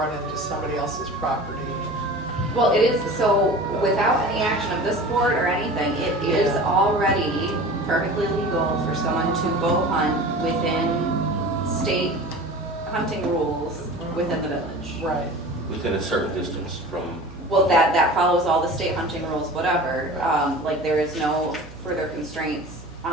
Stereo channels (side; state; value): right; noise; hum, 18 dB below the sound